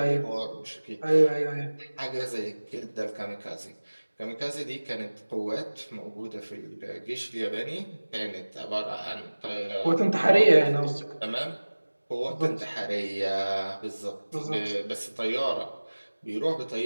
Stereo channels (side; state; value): both; inverted; correlation -1.00